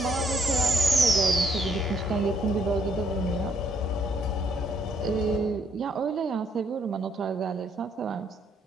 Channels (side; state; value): both; normal; correlation 0.70